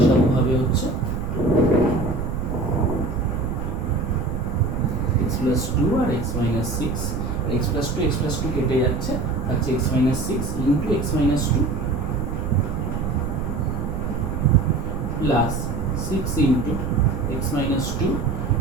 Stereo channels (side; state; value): right; noise; rumble, 3 dB below the sound